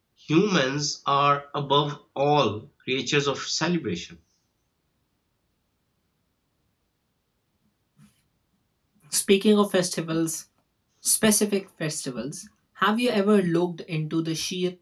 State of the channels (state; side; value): identical; both; correlation 1.00